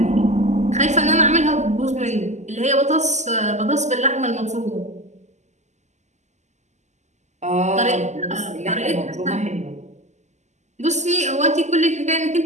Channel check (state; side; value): late; left; 0.33 ms